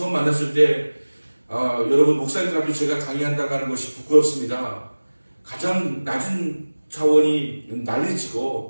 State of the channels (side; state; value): both; inverted; correlation -1.00